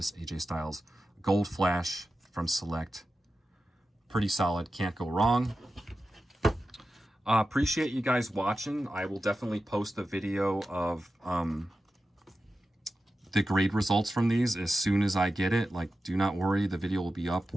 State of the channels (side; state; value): both; normal; correlation 0.92